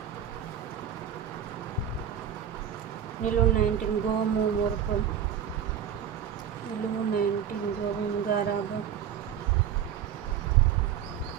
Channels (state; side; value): quieter; left; 9.1 dB